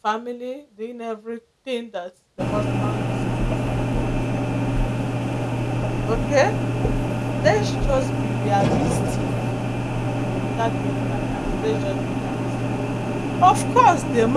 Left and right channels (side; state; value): both; identical; correlation 1.00